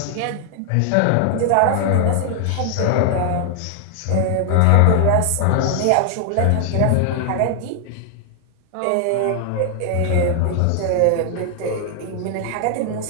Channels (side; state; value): both; different; correlation 0.00